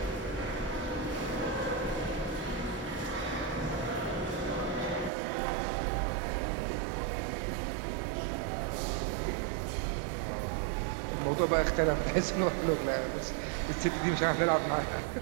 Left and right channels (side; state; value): left; drops out; at 5.1 s